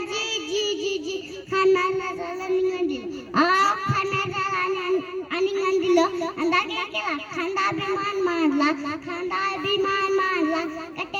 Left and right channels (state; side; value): identical; both; correlation 1.00